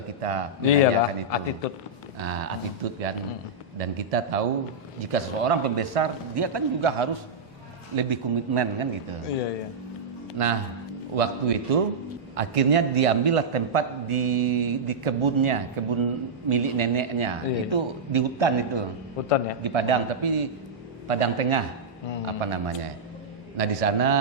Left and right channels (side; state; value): left; quieter; 3.3 dB